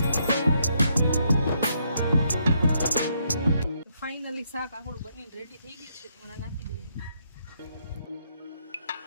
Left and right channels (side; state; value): both; inverted; correlation -0.75